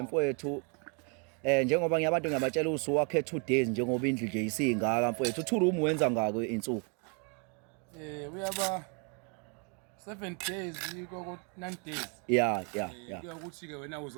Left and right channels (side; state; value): left; quieter; 36.4 dB